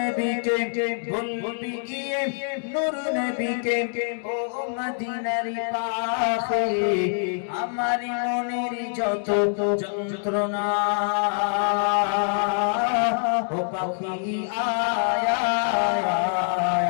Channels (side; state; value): right; silent; 62 dB below the other